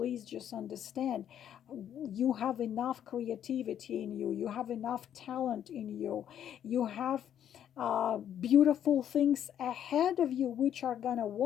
just understand, you have enough creativity in you. You have enough talent in you. You have beautiful things ahead of you which are gonna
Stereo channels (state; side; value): quieter; right; 9.9 dB